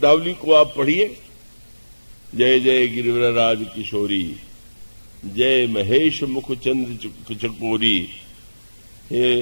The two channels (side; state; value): both; inverted; correlation -1.00